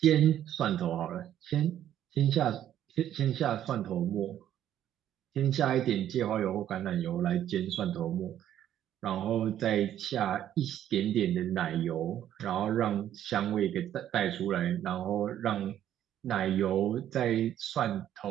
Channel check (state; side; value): quieter; left; 11.1 dB